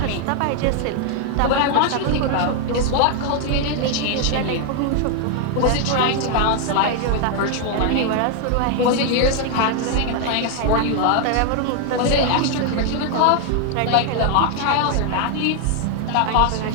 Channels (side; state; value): both; different; correlation 0.00